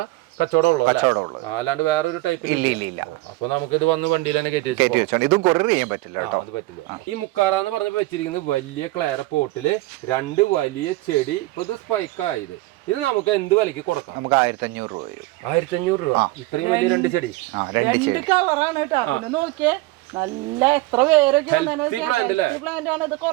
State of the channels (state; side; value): quieter; left; 19.9 dB